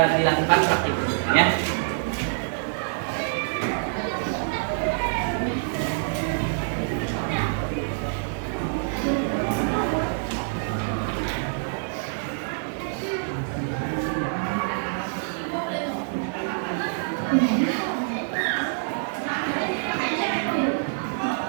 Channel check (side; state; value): left; silent; 55 dB below the other